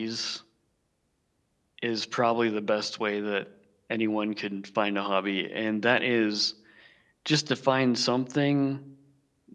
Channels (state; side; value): identical; both; correlation 1.00